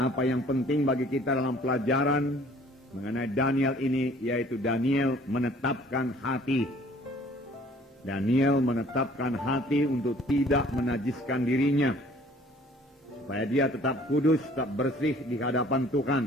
yang penting bagi kita dalam pelajaran mengenai Daniel ini, yaitu Daniel menetapkan hati. Daniel menetapkan hati untuk tidak menajiskan dirinya, supaya dia tetap kudus, tetap bersih di hadapan Tuhan.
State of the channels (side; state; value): both; normal; correlation 0.55